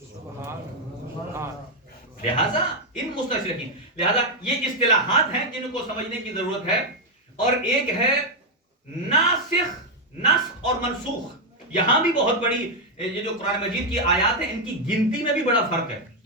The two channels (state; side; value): normal; both; correlation 0.01